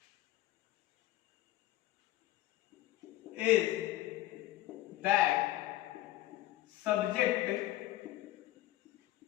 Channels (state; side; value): quieter; right; 15.7 dB